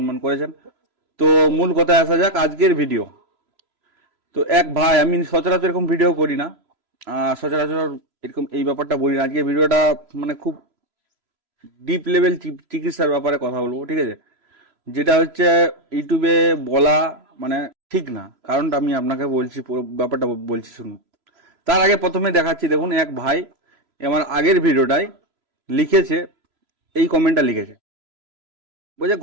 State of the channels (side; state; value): left; late; 3.0 ms